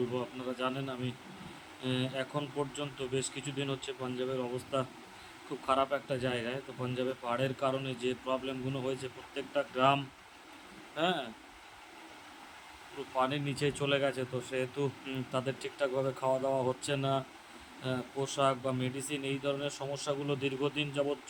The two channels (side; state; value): both; identical; correlation 1.00